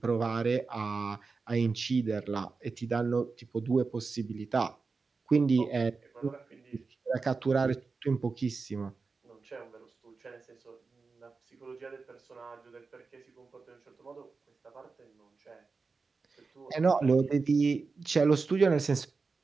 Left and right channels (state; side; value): quieter; left; 4.4 dB